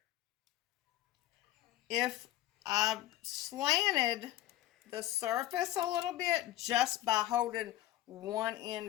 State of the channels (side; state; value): right; quieter; 14.5 dB